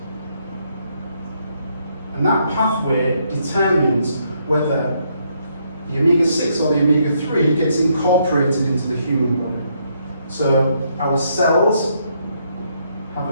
And that pathway determines whether the omega-6 or the omega-3 gets incorporated into the human body. So our cells have a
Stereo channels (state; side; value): inverted; both; correlation -0.74